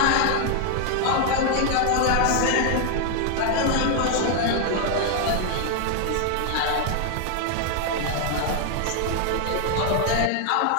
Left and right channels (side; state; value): both; different; correlation 0.00